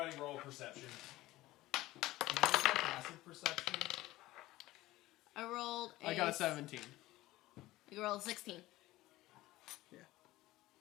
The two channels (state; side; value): quieter; right; 17.5 dB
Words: roll perception. Can I use my passive perception? I rolled a... I got a 17. You rolled a 16.